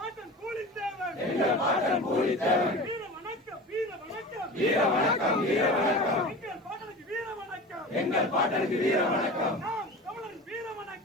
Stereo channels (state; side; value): normal; both; correlation 0.33